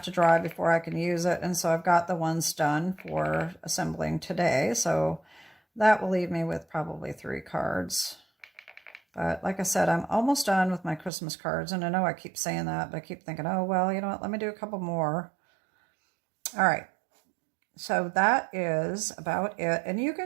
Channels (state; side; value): drops out; left; at 11.1 s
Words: to dry before I can use it. And so I've got the ones done for assembling today. So that will leave me with probably 3 cards. But like I said, I'm almost done with my Christmas cards. And I know I keep saying that, but I keep thinking, oh, well, you know what? Let me do a couple more. All right. So that is about it. And you